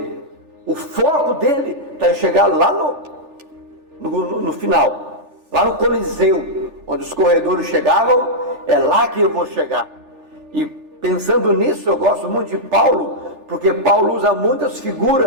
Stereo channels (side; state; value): left; late; 3.4 ms